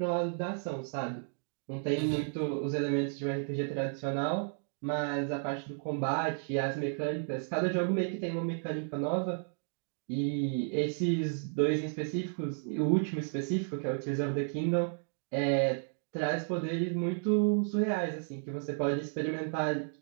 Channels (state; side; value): silent; left; 56 dB below the other